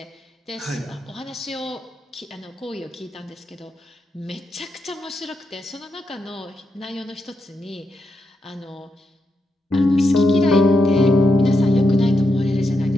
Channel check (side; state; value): both; normal; correlation 0.84